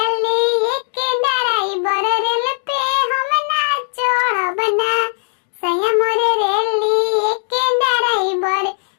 एक डराई बर रेल पे हम ना चढ़बना सया मोर रेली एक डराई बर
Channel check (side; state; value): right; silent; digital silence